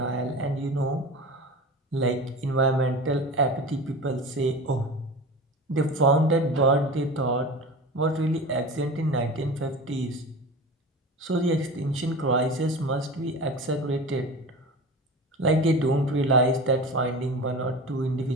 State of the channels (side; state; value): both; normal; correlation 0.32